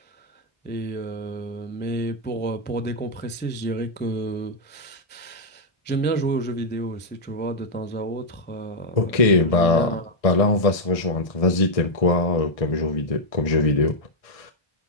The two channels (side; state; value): right; late; 1.6 ms